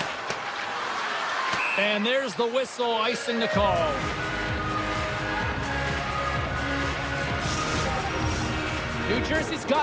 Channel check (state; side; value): identical; both; correlation 1.00